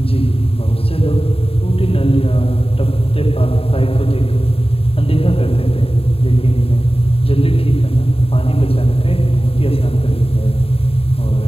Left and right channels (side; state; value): right; late; 0.28 ms